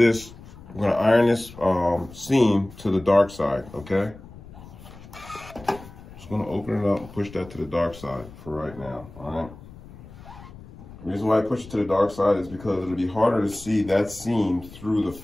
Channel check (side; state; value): left; noise; rumble, 18 dB below the sound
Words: we're gonna iron this seam to the dark side, okay? Just gonna open it up and push that to the dark side for right now, all right? The reason why I push it to the dark side is because it'll be harder to see that seam through the